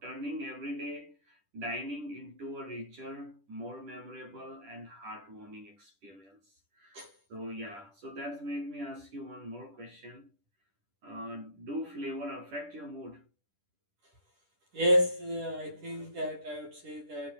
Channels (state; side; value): late; left; 10 ms